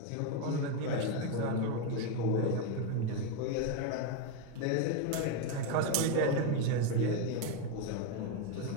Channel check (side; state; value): both; different; correlation 0.03